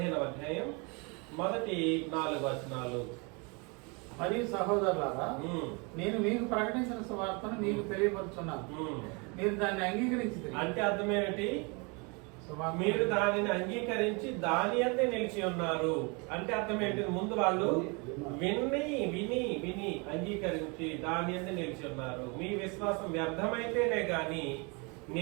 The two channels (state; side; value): quieter; left; 30.9 dB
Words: అధ్యాయం మొదటి 4 వచనాలు. మరియు సహోదరులారా, నేను మీకు ప్రకటించిన సువార్తను మీకు తెలియపరుచున్నాను, మీరు దాన్ని అంగీకరించి. అంటే అర్థం ఏమిటి? మీరు దానిని అంగీకరించి దాని అందే నిలిచి ఉన్నారు అంటే అర్థం ఏంటి? ముందు వాళ్ళు విని అంగీకరించి దాని అందే నిలిచి ఉన్నారు. మీ విశ్వాసం వ్యర్థమైతేనే గాని